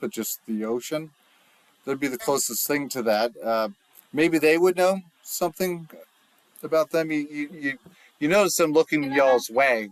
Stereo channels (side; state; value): both; identical; correlation 1.00